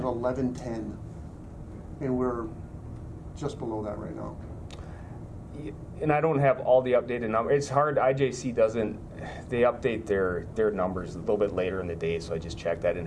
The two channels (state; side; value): identical; both; correlation 1.00